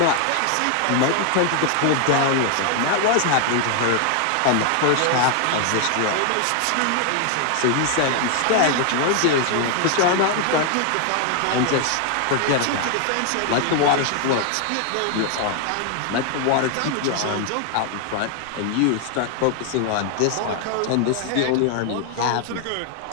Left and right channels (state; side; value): different; both; correlation 0.00